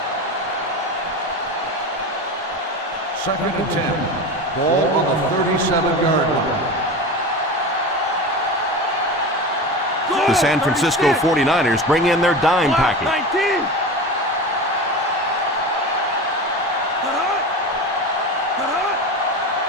Second and 10. Ball on the 37-yard line. The San Francisco 49ers bring in their dime package. 19.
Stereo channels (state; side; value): normal; both; correlation 0.27